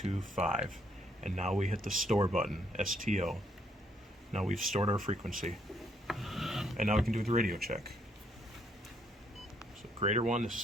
And now we hit the store button, STO. Now we've stored our frequency. And now we can do the radio check. So grader 1, this is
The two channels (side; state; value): both; normal; correlation 0.71